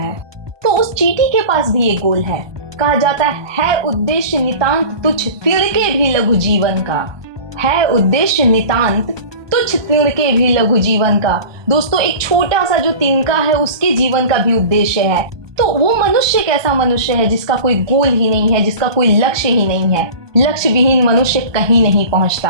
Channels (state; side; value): late; left; 1.2 ms